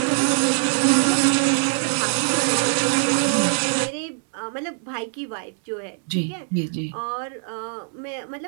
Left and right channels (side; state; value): left; silent; digital silence